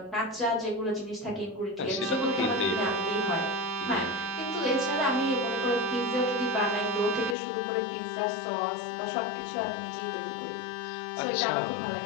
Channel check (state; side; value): drops out; right; at 7.4 s